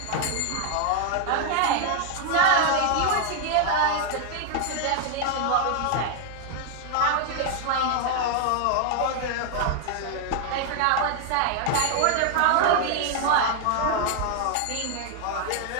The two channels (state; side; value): different; both; correlation 0.00